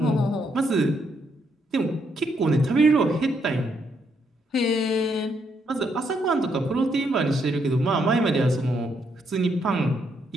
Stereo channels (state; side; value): normal; both; correlation 0.75